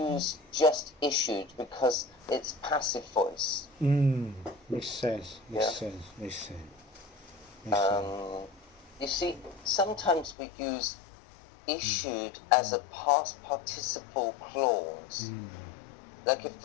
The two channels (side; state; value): right; drops out; at 10.4 s